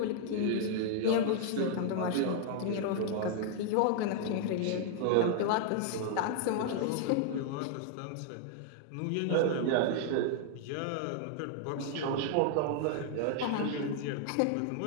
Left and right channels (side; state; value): both; different; correlation 0.00